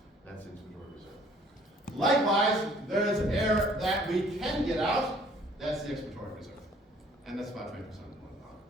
That's the inspiratory reserve. Likewise, there is air that we can get out. That's the expiratory reserve. And that's about 20% of the lung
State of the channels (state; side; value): normal; both; correlation 0.57